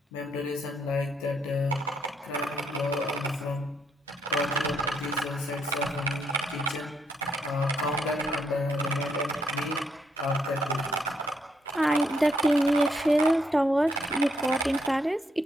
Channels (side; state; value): both; normal; correlation 0.76